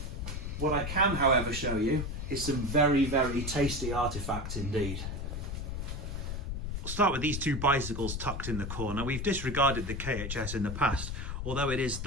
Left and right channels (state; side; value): noise; left; rumble, 4 dB below the sound